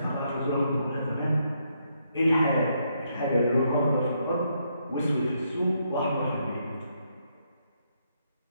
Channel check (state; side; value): inverted; both; correlation -0.76